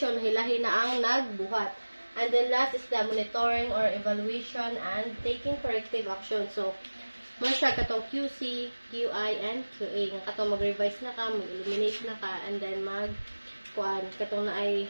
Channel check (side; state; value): both; inverted; correlation -1.00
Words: hilahi na ang nagbuhat. And then last is the monitoring or evaluation and taking corrective action. So, mo siya katong QC, QI, and QA. Nga katong mag-revise na ka, mag-eliminate na ka, and then katong na